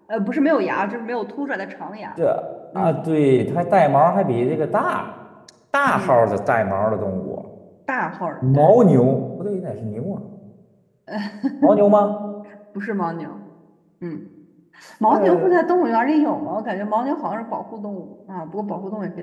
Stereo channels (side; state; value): both; identical; correlation 1.00